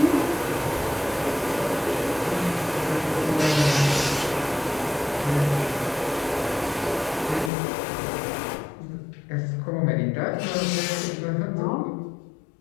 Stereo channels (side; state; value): right; drops out; at 7.5 s